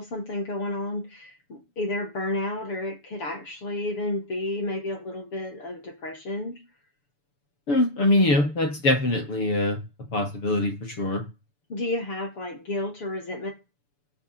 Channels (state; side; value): late; right; 6.9 ms